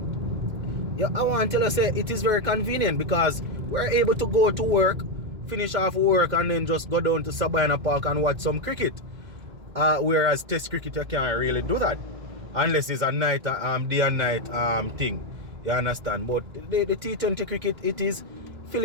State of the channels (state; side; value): late; left; 2.1 ms